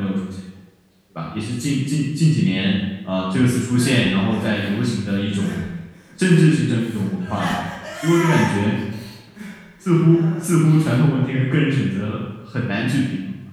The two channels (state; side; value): identical; both; correlation 1.00